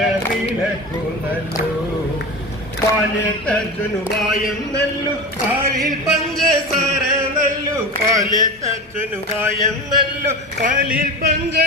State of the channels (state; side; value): normal; both; correlation 0.27